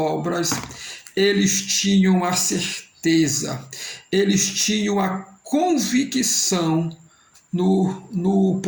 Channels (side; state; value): both; identical; correlation 1.00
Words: eles tinham a certeza, eles tinham a convicção no